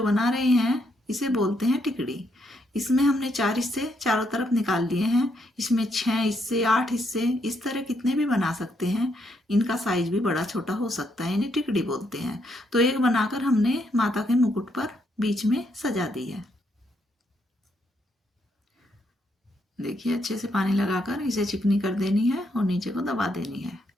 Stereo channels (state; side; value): normal; both; correlation 0.75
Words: बना रहे हैं इसे बोलते हैं टिकड़ी। इसमें हमने 4 हिस्से चारों तरफ निकाल लिए हैं। इसमें 6 हिस्से, 8 हिस्से, इस तरह कितने भी बना सकते हैं। इनका साइज भी बड़ा छोटा हो सकता है, इन्हें टिकड़ी बोलते हैं। तो एक बनाकर हमने माता के मुकुट पर बीच में सजा दी है। देखिए, अच्छे से पानी लगाकर इसे चिकनी कर देनी है और नीचे को दबा देनी है।